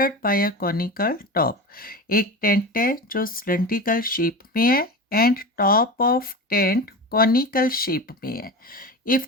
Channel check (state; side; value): normal; both; correlation 0.27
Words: by a conical top. एक tent है जो cylindrical shape में है and top of tent conical shape में है।